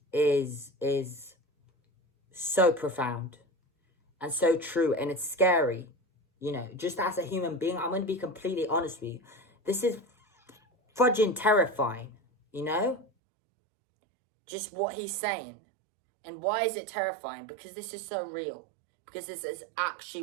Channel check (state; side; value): drops out; left; at 13.1 s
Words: is so profound and so true, and it's scary. You know, just as a human being, I'm going to be completely honest with you. This is fudging terrifying, you know? Just what he's saying. And why is it terrifying? Because this is so real. Because this is actually